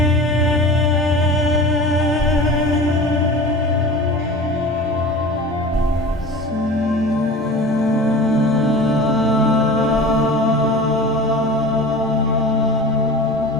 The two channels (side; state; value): both; normal; correlation 0.36